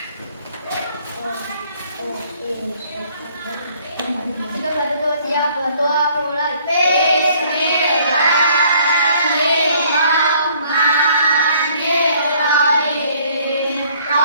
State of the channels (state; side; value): inverted; both; correlation -0.60